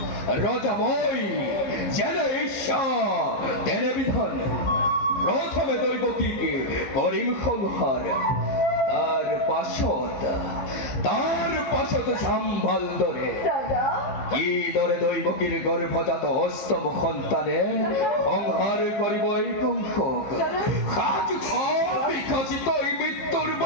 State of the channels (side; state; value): right; late; 15 ms